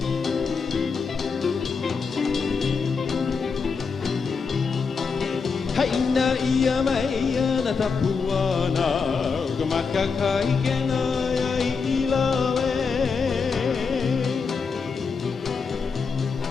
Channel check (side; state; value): right; quieter; 5.2 dB